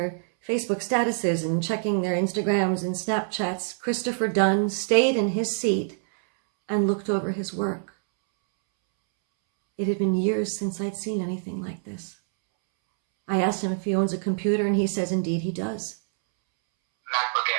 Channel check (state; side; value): silent; left; 61 dB below the other